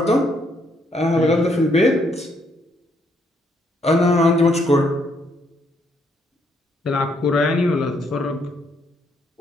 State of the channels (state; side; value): normal; both; correlation 0.72